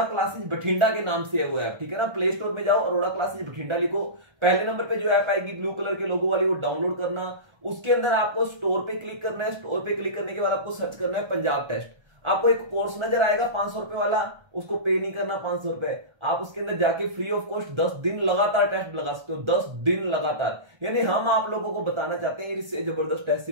क्लासेस बठिंडा के नाम से है वो ऐप। ठीक है ना। प्ले स्टोर में जाओ, अरोड़ा क्लासेस बठिंडा लिखो, पहले नंबर पे जो ऐप आएगी ब्लू कलर के लोगो वाली, वो डाउनलोड करना। उसके अंदर आपको स्टोर पे क्लिक करना है। स्टोर पे क्लिक करने के बाद आपको सर्च करना है पंजाब टेस्ट। आपको एक कोर्स नजर आएगा 500 रुपए वाला, उसको पे नहीं करना 500 रुपए। आप उसके अंदर जाके फ्री ऑफ कॉस्ट 10 दिन लगातार टेस्ट लगा सकते हो, 10 दिन लगातार। यानी हम आप लोगों को बताना चाहते हैं इससे जबरदस्त टेस्ट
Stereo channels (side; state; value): left; late; 1.3 ms